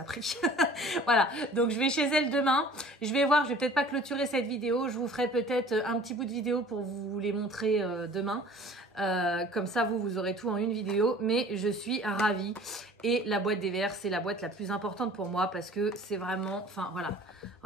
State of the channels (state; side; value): normal; both; correlation 0.48